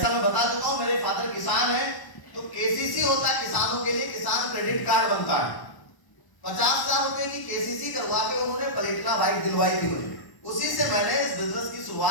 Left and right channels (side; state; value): right; late; 1.0 ms